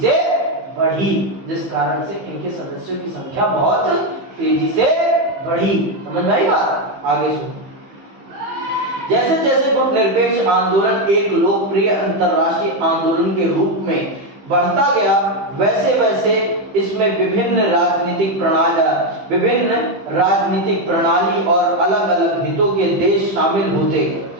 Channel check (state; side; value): late; left; 15 ms